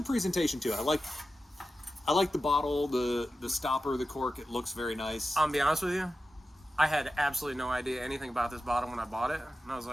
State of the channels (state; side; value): normal; both; correlation 0.92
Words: presentation too. I like the bottle, the stopper, the cork. It looks very nice. I'll be honest with you. I had absolutely no idea anything about this bottle when I bought it, and I was